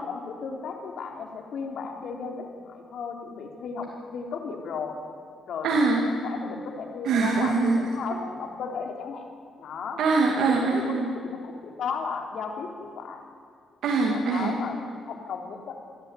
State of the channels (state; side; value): normal; both; correlation 0.68